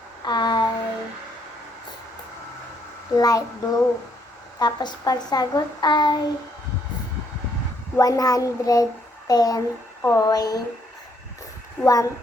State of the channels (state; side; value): normal; both; correlation 0.71